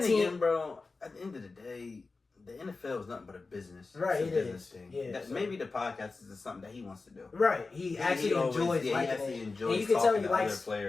then team, again, bro, at the end of the day, the NFL is nothing but a business. Right, It's a it business is. thing. Yeah, That, so- maybe the podcast is something that he wants to do. right? He actually enjoys he liking actually it. enjoys And you can tell talking he to likes other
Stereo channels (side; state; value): right; quieter; 3.9 dB